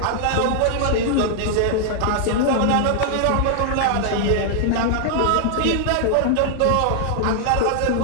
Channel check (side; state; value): both; different; correlation -0.01